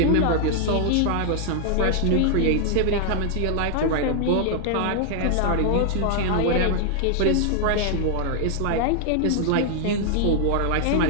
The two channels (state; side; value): different; both; correlation 0.00